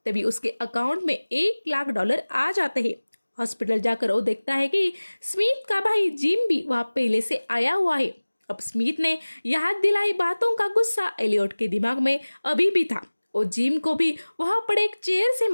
तभी उसके अकाउंट में $1,00,000 आ जाते हैं। हॉस्पिटल जाकर वो देखता है कि स्मिथ का भाई जिम भी वहाँ पहले से आया हुआ है। अब स्मिथ ने याद दिलाई बातों का गुस्सा एलियट के दिमाग में अभी भी था। वो जिम को भी वहां पड़े एक चेयर से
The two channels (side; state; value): both; inverted; correlation -1.00